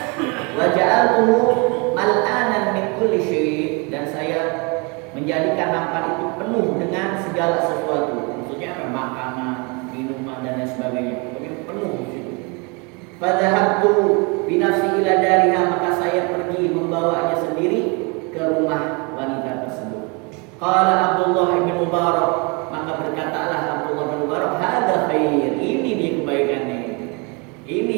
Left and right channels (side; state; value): left; quieter; 31.1 dB